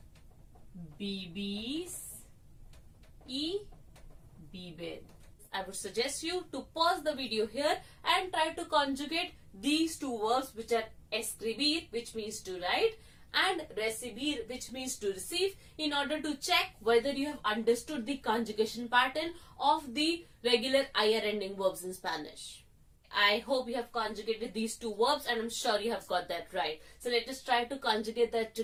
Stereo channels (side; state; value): both; identical; correlation 1.00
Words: Vivís. Y viven. I would suggest you to pause the video here and try to conjugate these two verbs, which are escribir, which means to write, and recibir, which means to receive, in order to check whether you have understood the conjugation pattern of the regular ir ending verbs in Spanish. I hope you have conjugated these two verbs and I'm sure you have got that right. So let us try to conjugate that